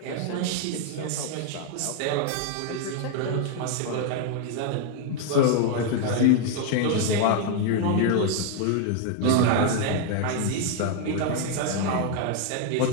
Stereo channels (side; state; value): both; different; correlation 0.00